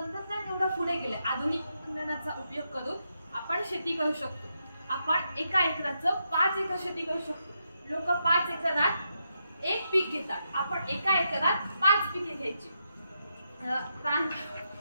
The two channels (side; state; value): both; inverted; correlation -0.83